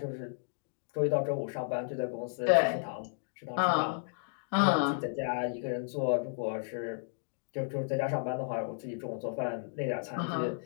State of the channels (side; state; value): right; silent; digital silence